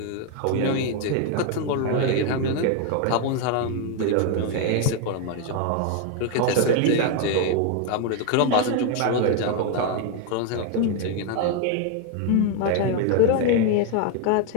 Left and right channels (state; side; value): different; both; correlation 0.01